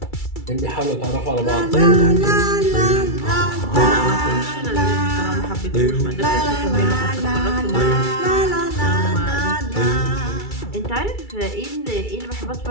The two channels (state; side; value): late; right; 2.3 ms